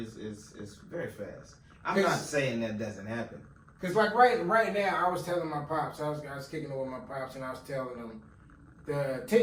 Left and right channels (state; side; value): identical; both; correlation 1.00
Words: very fast. I'm not saying that doesn't happen. Cause like right now, I was telling my pops, I was kicking it with my pops, and I was telling them the